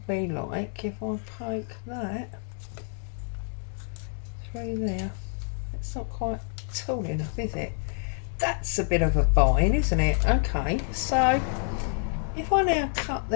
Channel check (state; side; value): silent; right; 59 dB below the other